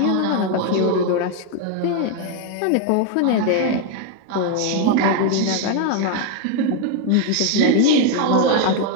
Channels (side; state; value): both; different; correlation 0.01